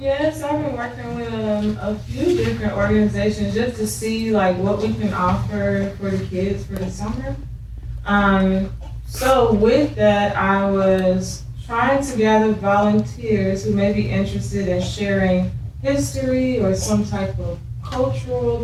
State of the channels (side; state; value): both; identical; correlation 1.00